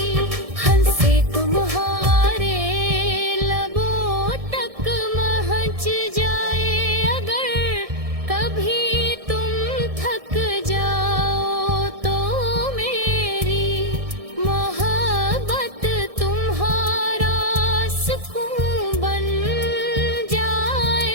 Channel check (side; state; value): left; late; 1.6 ms